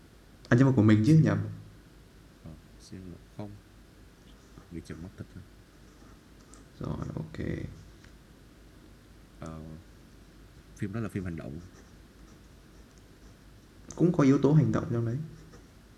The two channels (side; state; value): both; identical; correlation 1.00